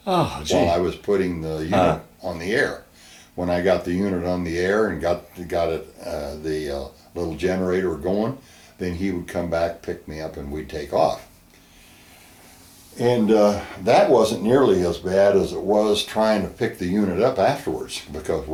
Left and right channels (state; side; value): identical; both; correlation 1.00